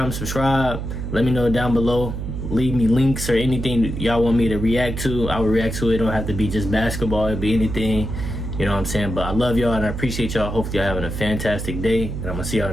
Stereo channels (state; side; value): noise; right; hum, 5 dB below the sound